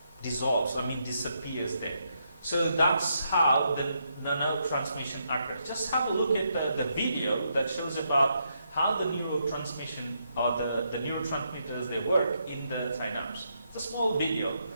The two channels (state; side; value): inverted; both; correlation -0.79